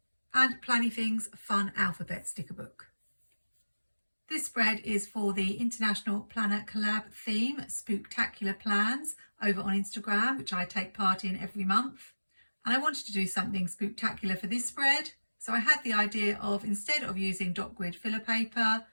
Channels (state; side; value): inverted; both; correlation -1.00